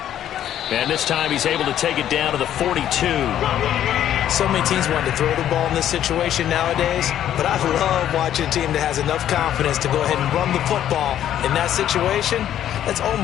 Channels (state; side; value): quieter; right; 11.0 dB